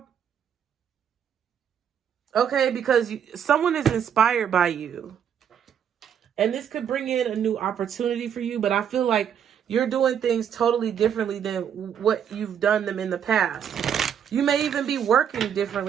Okay, because someone is inspired by you. And this could bring in a new opportunity for you. But I feel like you're doing things totally differently than what you've done them in the past. You may even be working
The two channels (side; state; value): left; quieter; 8.6 dB